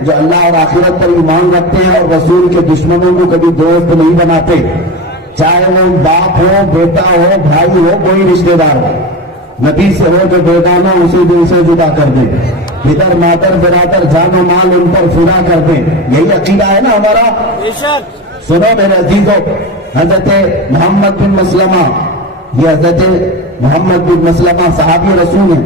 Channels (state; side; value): normal; both; correlation 0.25